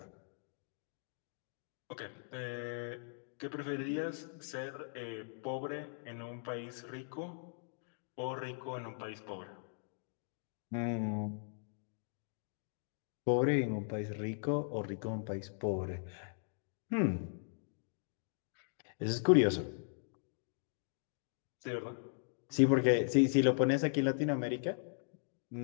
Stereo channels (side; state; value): right; silent; digital silence